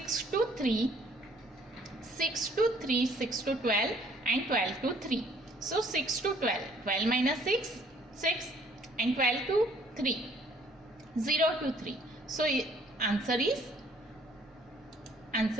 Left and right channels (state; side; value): normal; both; correlation 0.60